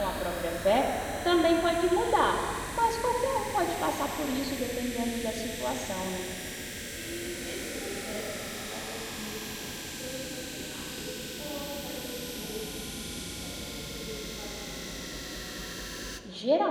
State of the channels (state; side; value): identical; both; correlation 1.00